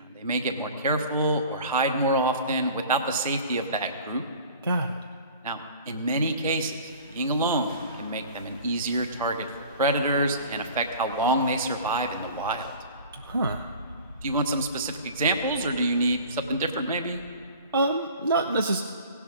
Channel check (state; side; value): inverted; both; correlation -0.43